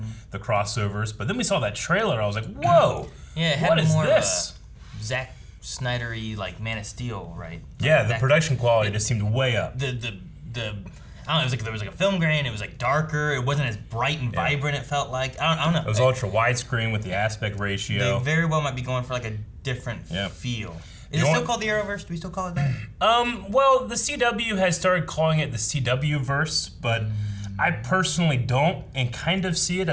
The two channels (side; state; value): both; identical; correlation 1.00